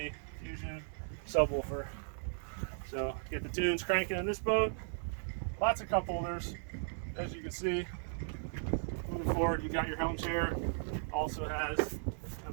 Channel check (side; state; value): left; silent; digital silence